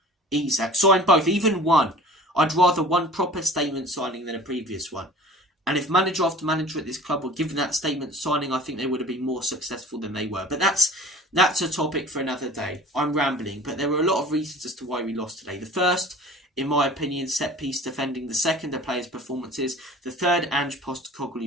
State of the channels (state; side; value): normal; both; correlation 0.44